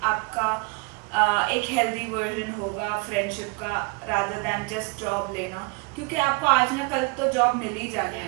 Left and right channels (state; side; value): quieter; left; 29.2 dB